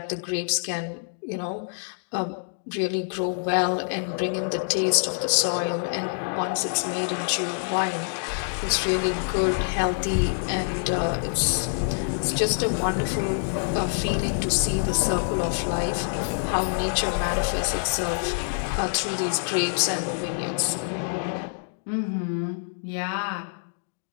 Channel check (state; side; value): silent; right; digital silence